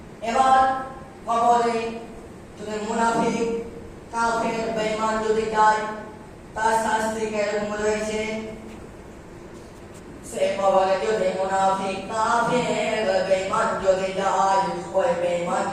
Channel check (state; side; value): identical; both; correlation 1.00